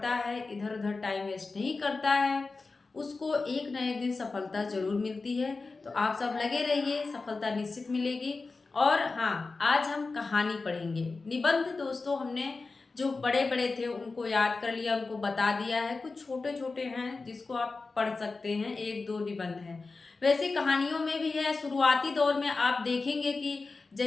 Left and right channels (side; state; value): right; quieter; 3.9 dB